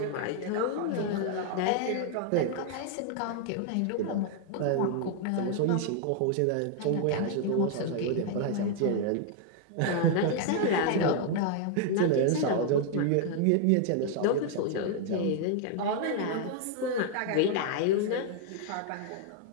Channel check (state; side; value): different; both; correlation 0.00